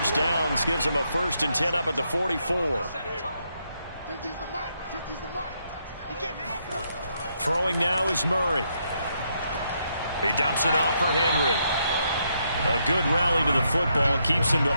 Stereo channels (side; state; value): both; inverted; correlation -0.77